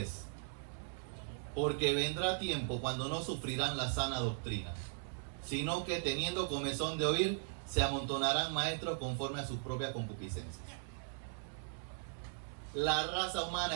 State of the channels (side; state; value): left; silent; digital silence